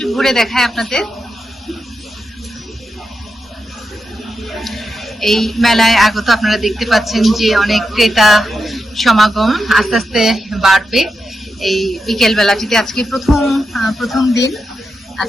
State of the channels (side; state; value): both; normal; correlation 0.87